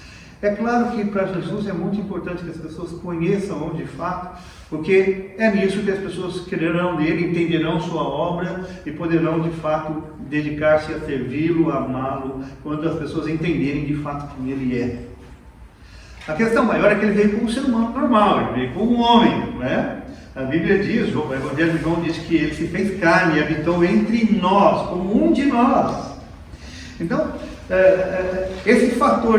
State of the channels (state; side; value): identical; both; correlation 1.00